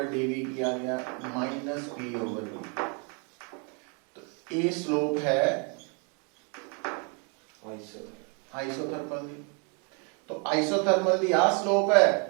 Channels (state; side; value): quieter; left; 37.3 dB